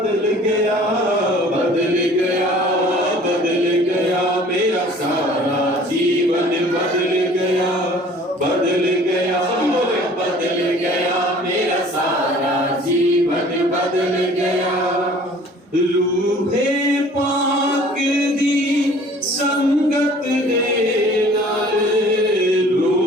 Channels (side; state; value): both; normal; correlation 0.50